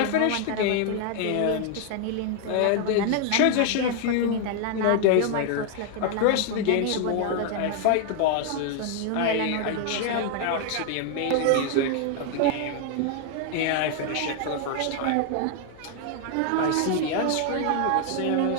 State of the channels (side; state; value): both; different; correlation 0.00